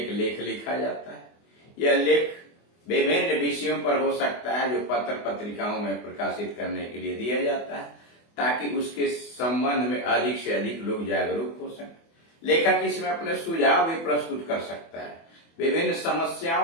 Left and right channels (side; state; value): right; late; 24 ms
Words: लेख लिखा जाता है। यह लेख विभिन्न विषयों पर हो सकता है जो पत्र पत्रिकाओं में प्रकाशित करने के लिए दिया जाता है, ताकि उसके संबंध में अधिक से अधिक लोग जागरूक हो सकें। लेखक इसमें अपने सुझाव भी प्रस्तुत कर सकता है। विभिन्न